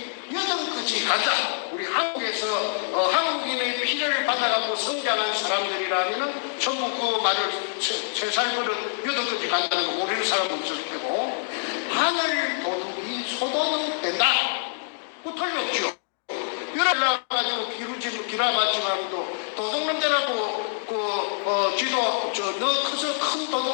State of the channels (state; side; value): silent; right; digital silence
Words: 여든까지 간다. 우리 한국에서 한국인의 피를 받아갖고 성장한 사람들이라면 전부 그 말을 세살 버릇 여든까지 간다는 거 모르는 사람은 없을 테고 하늘 도둑이 소도둑 된다. 그 틀림없죠. 올라가지고 기라봤지만도 도둑놈들하고 지도 너 커서 큰